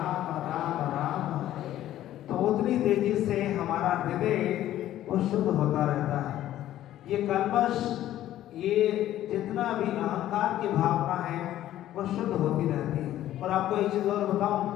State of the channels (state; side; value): quieter; right; 13.1 dB